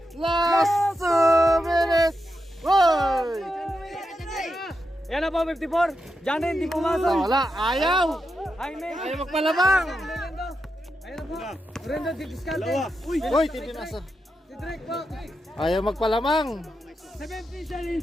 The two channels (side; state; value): both; normal; correlation 0.87